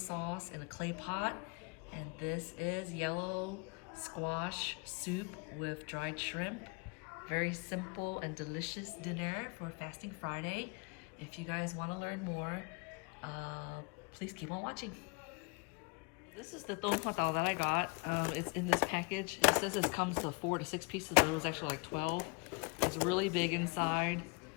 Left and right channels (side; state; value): right; quieter; 30.8 dB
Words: in a clay pot. And this is yellow squash soup with dried shrimp. Very simple and delicious dinner for Fasting Friday. If you guys want to learn more, please keep on watching. This is the tong patao that I got. It's in this package. It says it comes to 4 to 6 pieces, but it was actually like 12. It's really big inside.